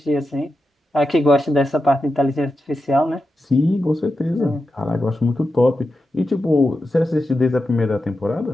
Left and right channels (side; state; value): both; normal; correlation 0.90